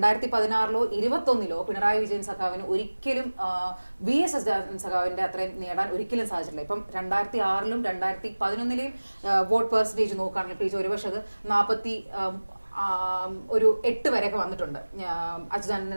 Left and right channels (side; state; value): both; inverted; correlation -1.00